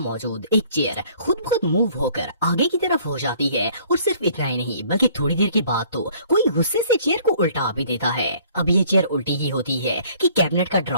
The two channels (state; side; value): inverted; both; correlation -0.57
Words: एक चेयर खुद ब खुद मूव होकर आगे की तरफ हो जाती है और सिर्फ इतना ही नहीं बल्कि थोड़ी देर के बाद तो कोई गुस्से से चेयर को उल्टा भी देता है। अब ये चेयर उल्टी ही होती है कि कैबिनेट का